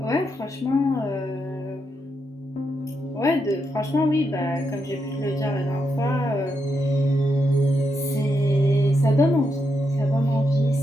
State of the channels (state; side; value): normal; both; correlation 0.82